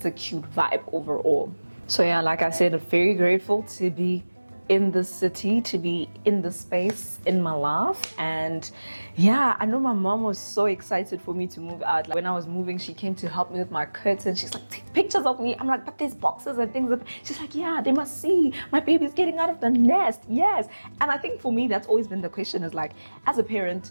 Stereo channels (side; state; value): both; inverted; correlation -1.00